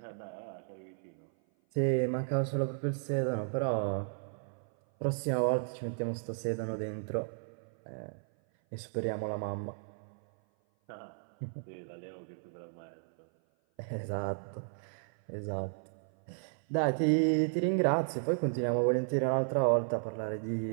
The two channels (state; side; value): silent; left; 55 dB below the other